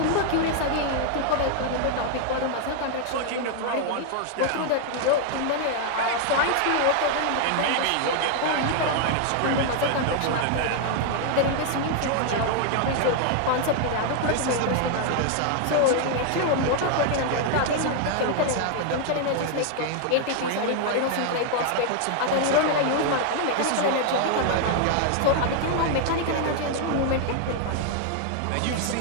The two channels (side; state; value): both; different; correlation 0.00